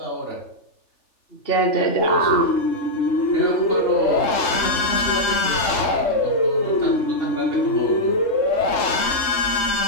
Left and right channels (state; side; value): late; right; 3.4 ms